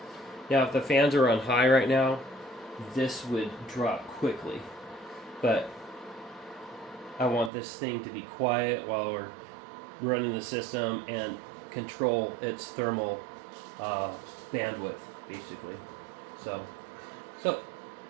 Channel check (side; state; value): left; drops out; at 7.5 s